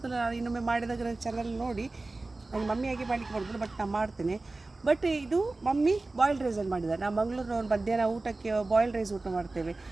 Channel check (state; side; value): quieter; left; 3.2 dB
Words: ನಾನು ಇನ್ನೊಮ್ಮೆ ಮಾಡಿದಾಗ ನನ್ನ ಚಾನಲ್ ನೋಡಿ. ನನಗೆ ಮಮ್ಮಿಯಾಗಿ ಮಾಡಲಿಕ್ಕೆ ಮಾಡೋದಿಲ್ಲ, ಬಟ್ ನಾನು ಮಾಡ್ತೇನೆ. ಬಟ್ ಇದು ಮಮ್ಮಿ ಬಾಯ್ಲ್ಡ್ ರೈಸಲ್ಲಿ ಮಾಡಿದ್ದಾರೆ. ನಾವು ಮಂಗಳೂರಿನವ್ರು ಮಧ್ಯಾಹ್ನ ಊಟಕ್ಕೆ ಬಾಯ್ಲ್ಡ್ ರೈಸ್ ಊಟ ಮಾಡ್ತೇವೆ.